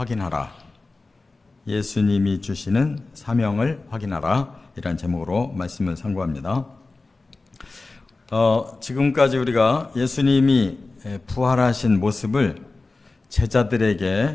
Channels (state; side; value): quieter; right; 3.5 dB